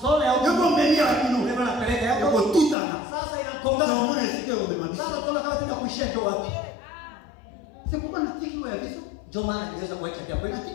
ya Yoko menu ya bino. Ndio napeleka Yoko yako. tutana. Sasa Ndio inakongana. mwana sike umemaliza. Sasa tunaona kama tunakuishia ndio wapi. C'est pourquoi natiki wa biso. Ndio maana niweza kuacha kwa kweli.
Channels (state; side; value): drops out; right; at 2.8 s